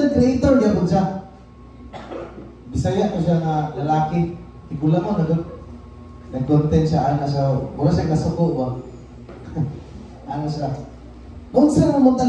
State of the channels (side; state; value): both; identical; correlation 1.00